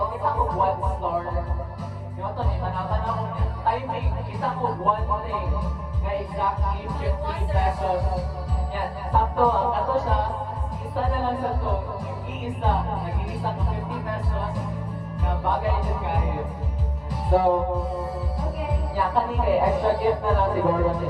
kita ko one star. Yung ito, tanatan ako niya. Timing, kita ko one thing. Na exactly 50 pesos. Yan, sakto, ang kato siya. Isa na lang sa to. Iisa, nag-iisa ko 50 pesos. Na bagay din kayo. So, yan, kanina extra gift na lang siguro ni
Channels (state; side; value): identical; both; correlation 1.00